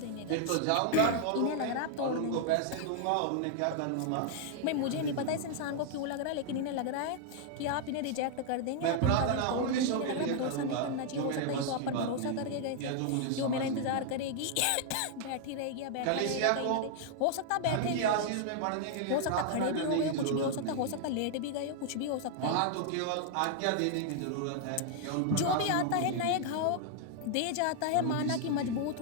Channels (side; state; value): both; different; correlation 0.00